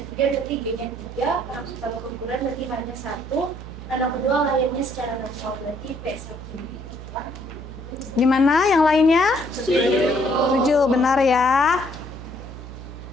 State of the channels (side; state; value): right; noise; hum, 12 dB below the sound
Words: berarti G-nya 3, anak pertama keguguran berarti hanya 1, anak kedua lahirnya secara normal berarti P1. Di mana yang lainnya? Setuju, benar ya.